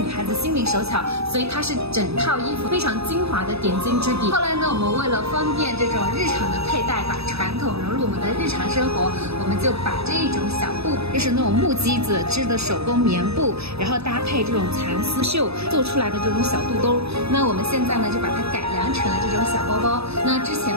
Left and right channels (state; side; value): late; left; 0.79 ms